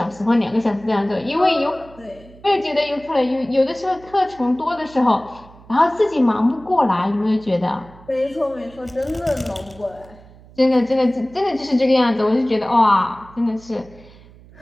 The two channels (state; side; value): noise; right; hum, 23 dB below the sound